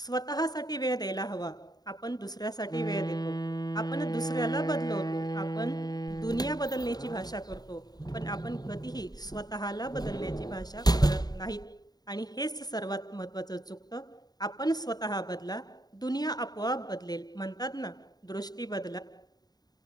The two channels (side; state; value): right; late; 0.19 ms